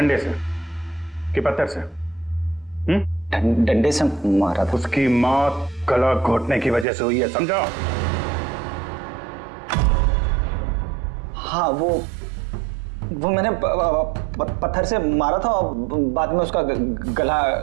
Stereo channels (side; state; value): left; drops out; at 6.9 s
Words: से कि पत्थर से? डंडे से मारा था। उसकी मौत गला घोटने की वजह से हुई है, समझो? हाँ वो मैंने पत्थर से मारा था और बाद में उसका